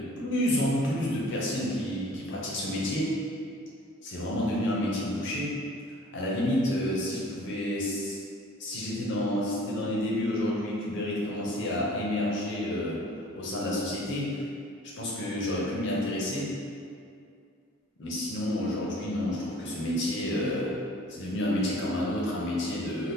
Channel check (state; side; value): normal; both; correlation 0.50